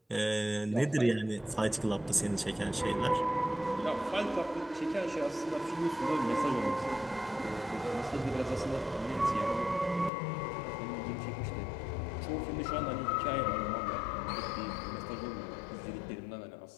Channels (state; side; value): drops out; right; at 10.1 s